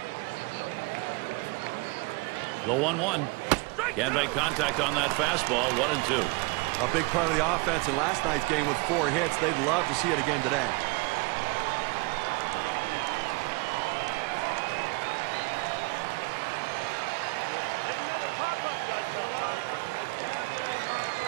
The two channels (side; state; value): left; quieter; 26.5 dB